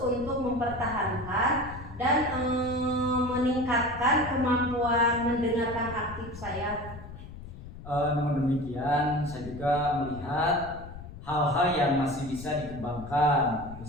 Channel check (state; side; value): noise; left; rumble, 13 dB below the sound